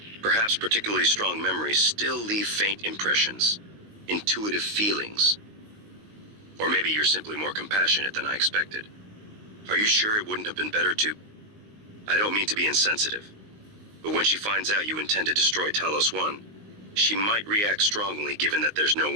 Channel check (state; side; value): late; left; 19 ms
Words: Perhaps particularly strong memories still leave faint impressions. Intuitive feelings. Or maybe you're simply more compassionate than I expected. Are you sure it wouldn't have been better to... I don't mean to be insensitive, but when she finds out you intend to destroy Talos 1, she might react strongly given that there's no